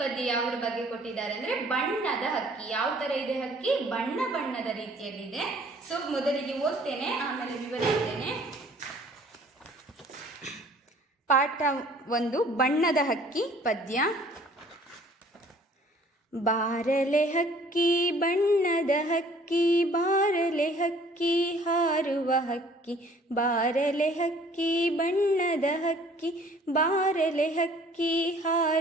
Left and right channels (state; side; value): normal; both; correlation 0.55